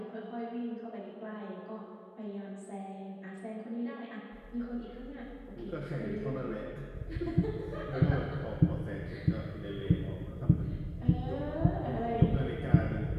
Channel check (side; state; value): both; identical; correlation 1.00